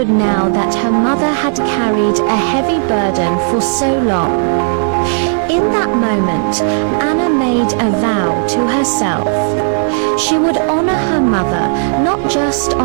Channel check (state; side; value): silent; left; digital silence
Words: now that her mother had carried a heavy burden for so long. In that moment, Anna made a vow to herself. She would honor her mother not just